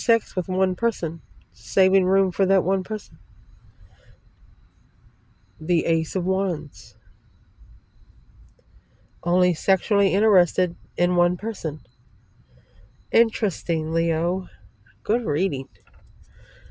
with one person. Saving room for that one person. The Ace of Wands. Only sexually interested in one person. Interesting, Leo. Good reading.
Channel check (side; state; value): both; identical; correlation 1.00